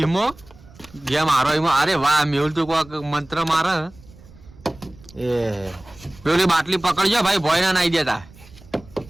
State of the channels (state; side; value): noise; right; rumble, 23 dB below the sound